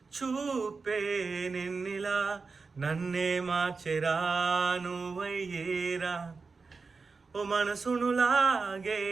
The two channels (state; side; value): quieter; left; 4.5 dB